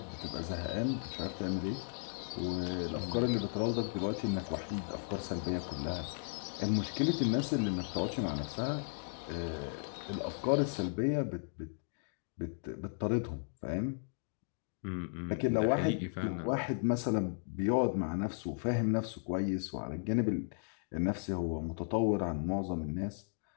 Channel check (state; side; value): silent; right; digital silence